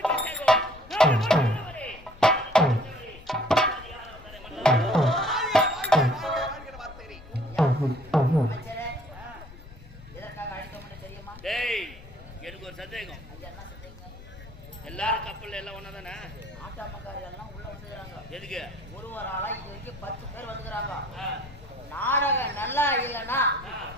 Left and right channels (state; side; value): noise; left; rumble, 18 dB below the sound